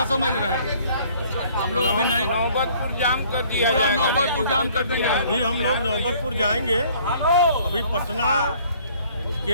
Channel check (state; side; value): inverted; both; correlation -0.57